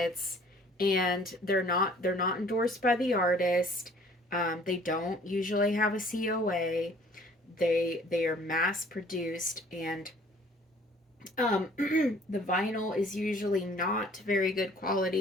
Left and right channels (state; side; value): normal; both; correlation 0.55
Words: and they're not endorsed by the artist. They don't usually have a COA. They are mass produced, and the vinyl is usually not very good